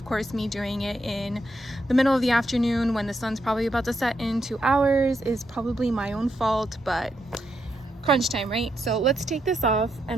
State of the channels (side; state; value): both; normal; correlation 0.81